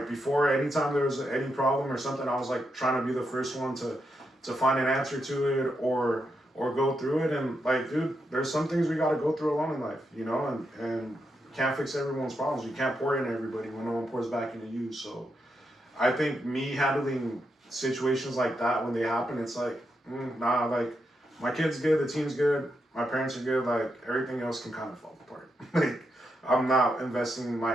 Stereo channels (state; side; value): normal; both; correlation 0.83